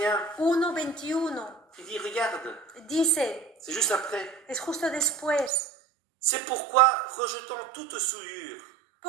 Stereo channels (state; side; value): drops out; left; at 5.5 s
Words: 1:21, Il dit, regarde, dice, c'est juste après. es justo después, C'est pourquoi, rejetant toute souillure